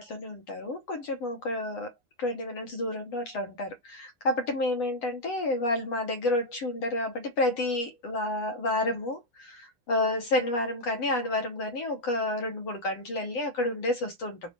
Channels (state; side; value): late; right; 8.1 ms